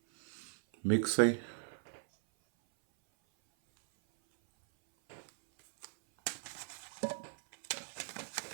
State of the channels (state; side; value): silent; left; 53 dB below the other